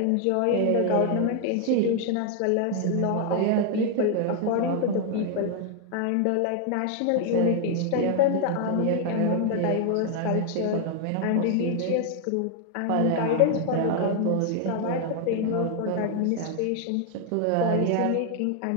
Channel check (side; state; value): both; different; correlation 0.00